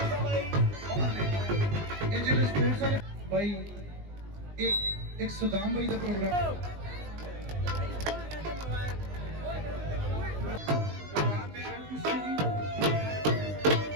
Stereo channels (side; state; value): left; late; 20 ms